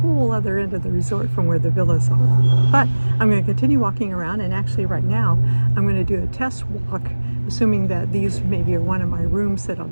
other end of the resort from where the villas are. But I'm going to continue walking around, and actually right now I'm going to do a test walk, assuming that these maybe are one of my rooms that I'll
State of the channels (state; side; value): inverted; both; correlation -1.00